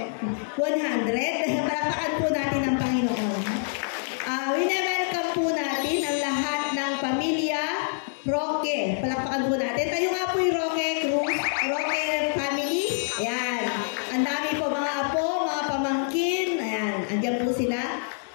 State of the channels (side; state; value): right; silent; digital silence